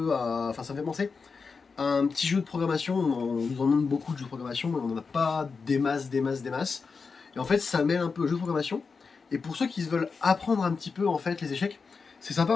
à... Enfin ça me fait penser à un petit jeu de programmation. On nous en demande beaucoup de jeux de programmation, mais on n'en a pas des masses. Et en fait ça mêle un peu jeu de programmation. Et pour ceux qui veulent apprendre un petit peu en fait les échecs, c'est sympa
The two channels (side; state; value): right; quieter; 4.9 dB